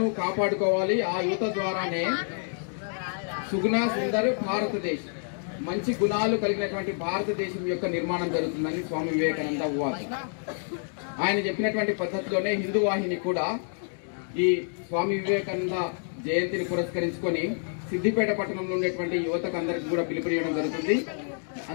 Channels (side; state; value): right; silent; 59 dB below the other